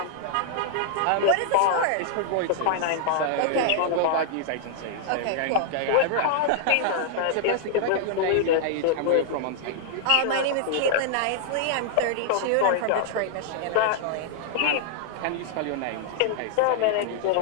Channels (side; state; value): both; different; correlation -0.01